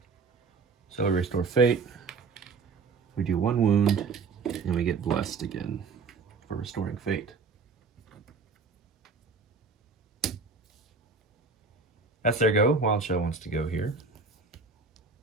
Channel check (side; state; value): left; quieter; 4.6 dB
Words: So we restore fate. We do 1 wound, and we get blessed again for restoring fate. That's their go. Wild Shell wants to go here.